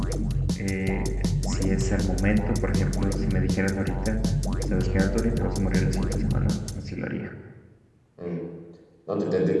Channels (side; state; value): both; identical; correlation 1.00